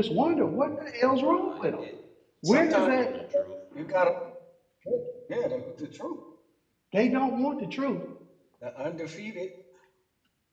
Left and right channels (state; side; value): identical; both; correlation 1.00